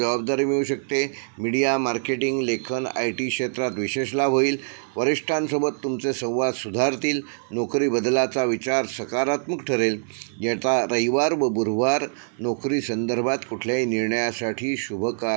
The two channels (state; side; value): silent; left; 56 dB below the other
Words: मिळू शकते. मीडिया, मार्केटिंग, लेखन, IT क्षेत्रात विशेष लाभ होईल. वरिष्ठांसोबत तुमचे संवाद सुधारतील. नोकरी बदलाचा विचार सकारात्मक ठरेल. येता रविवार व गुरुवार नोकरी संदर्भात कुठल्याही निर्णयासाठी